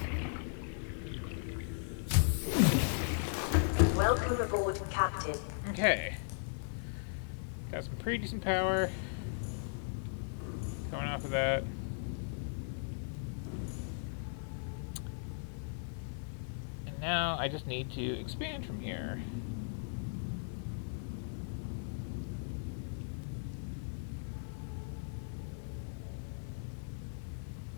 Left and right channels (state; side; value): silent; right; digital silence